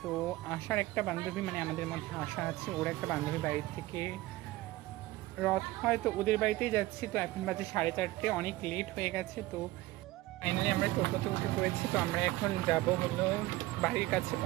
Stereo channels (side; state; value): left; quieter; 18.0 dB